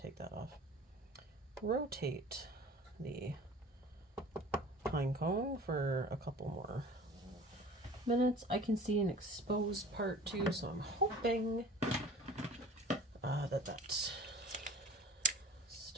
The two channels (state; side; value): normal; both; correlation 0.43